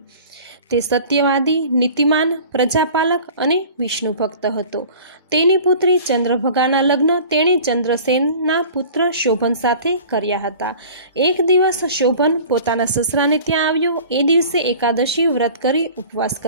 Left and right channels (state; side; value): inverted; both; correlation -0.43